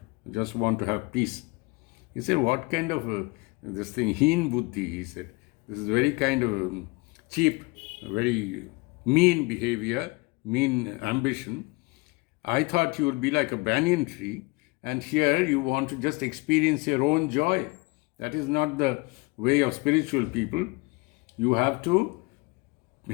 I just want to have peace. He said, what kind of this thing, heen buddhi, he said. This is very kind of cheap, very mean behavior, mean ambition. I thought you would be like a banyan tree, and here you want to just experience your own joy. That is not the way of spiritual people. You have to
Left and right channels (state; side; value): quieter; right; 25.7 dB